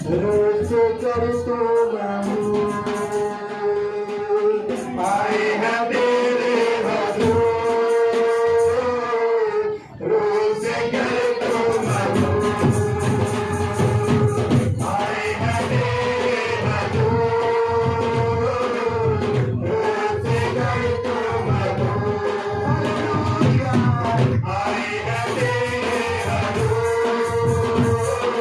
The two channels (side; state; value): both; identical; correlation 1.00